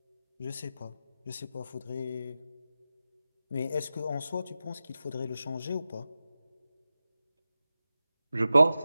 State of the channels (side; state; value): both; inverted; correlation -0.93